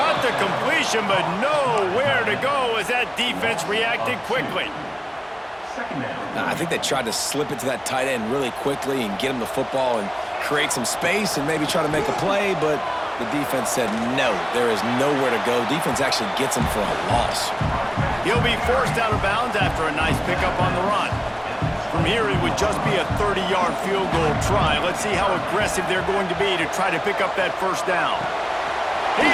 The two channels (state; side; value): identical; both; correlation 1.00